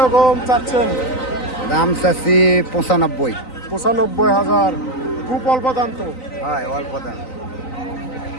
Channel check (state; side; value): late; right; 3.9 ms